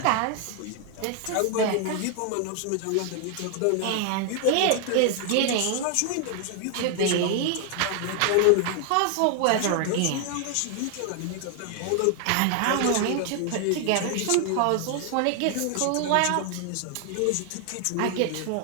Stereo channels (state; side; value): different; both; correlation 0.00